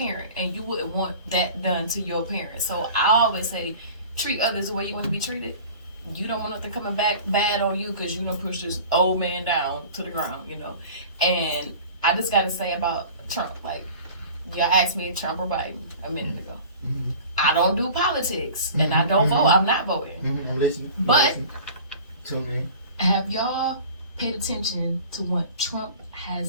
And you wouldn't want that done to your parent. So I always say, treat others the way you want to be treated. You don't want nothing coming back bad on you because you done pushed this old man down to the ground, And I just got to say about Trump, like, y'all asked me if Trump or Biden a minute ago. Mm-hmm. I don't do politics, and I don't vote. I'm not voting. Mm-hmm. I'm listening. But Tune in. have y'all paid attention to what Trump has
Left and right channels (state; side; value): inverted; both; correlation -0.42